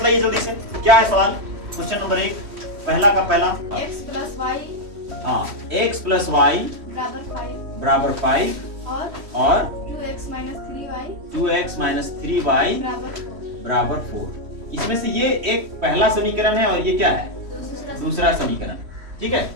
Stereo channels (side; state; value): left; late; 3.1 ms